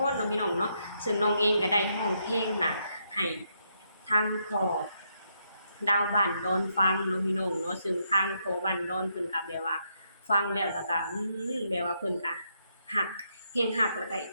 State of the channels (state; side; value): inverted; both; correlation -0.78